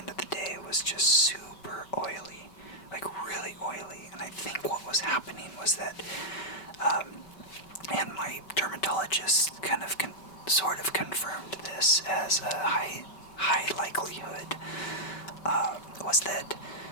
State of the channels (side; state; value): right; late; 5.2 ms